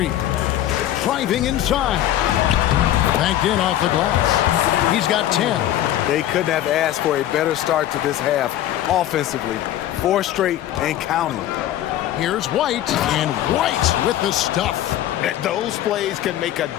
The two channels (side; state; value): right; quieter; 12.8 dB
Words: Driving inside. Banked in off the glass. He's got 10. They couldn't have asked for a better start to this half offensively. 4 straight and counting. Here's White, and White with the stuff. Those plays can make a